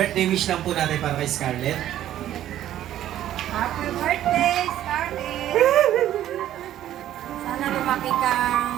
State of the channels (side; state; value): left; quieter; 12.3 dB